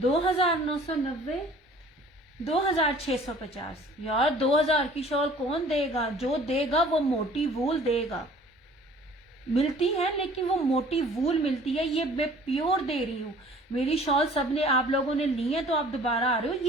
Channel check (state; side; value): normal; both; correlation 0.51